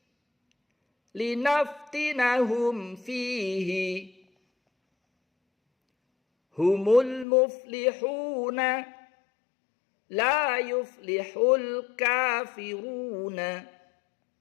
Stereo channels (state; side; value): drops out; right; at 7.2 s